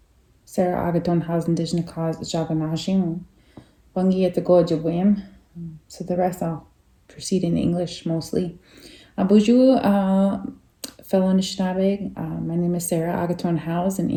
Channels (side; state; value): both; identical; correlation 1.00